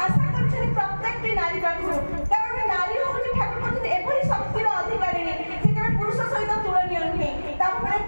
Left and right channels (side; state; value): both; inverted; correlation -1.00